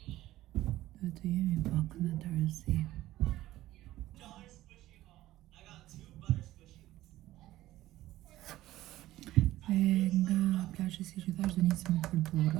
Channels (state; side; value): quieter; left; 15.5 dB